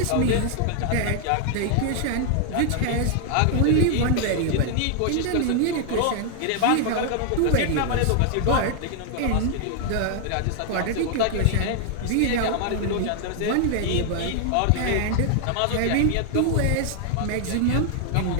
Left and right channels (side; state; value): both; different; correlation 0.00